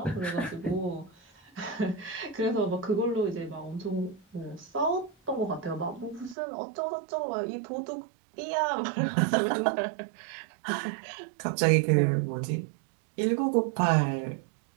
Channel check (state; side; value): drops out; left; at 6.4 s